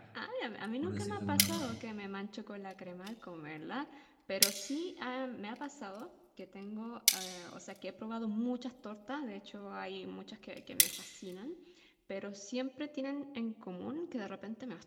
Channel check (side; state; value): both; identical; correlation 1.00